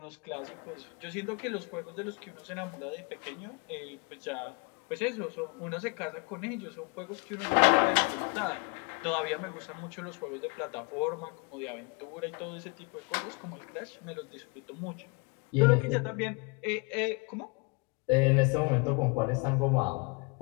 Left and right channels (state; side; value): quieter; right; 32.0 dB